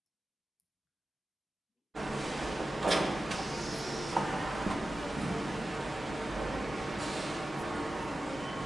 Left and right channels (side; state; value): both; normal; correlation 0.94